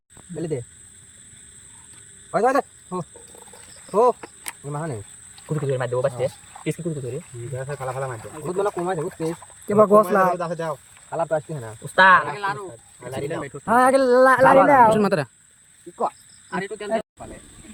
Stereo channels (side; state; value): both; identical; correlation 1.00